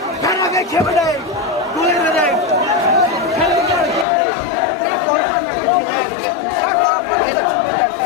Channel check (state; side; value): drops out; right; at 4.0 s